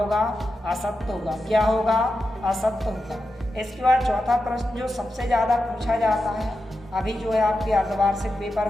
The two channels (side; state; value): both; normal; correlation 0.89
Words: असत्य होगा। क्या होगा, असत्य होगा। इसके बाद चौथा प्रश्न जो सबसे ज़्यादा पूछा जाता है, अभी जो है आपके अर्धवार्षिक पेपर